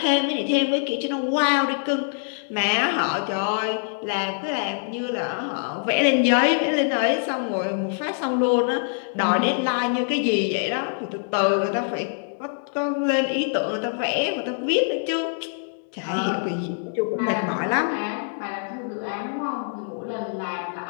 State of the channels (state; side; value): silent; right; digital silence